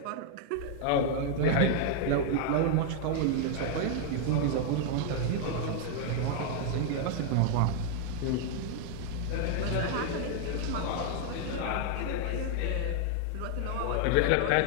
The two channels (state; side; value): different; both; correlation 0.00